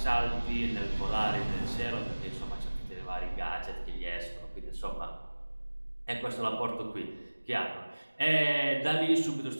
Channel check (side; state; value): both; inverted; correlation -1.00